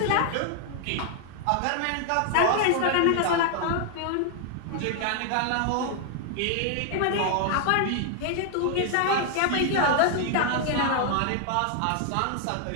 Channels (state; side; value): different; both; correlation 0.00